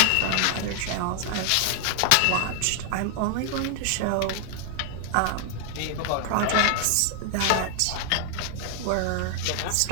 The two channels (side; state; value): both; different; correlation 0.00